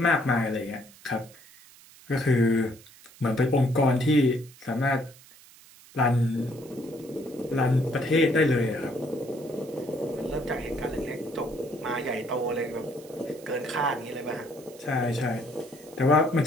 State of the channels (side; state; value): right; noise; hiss, 23 dB below the sound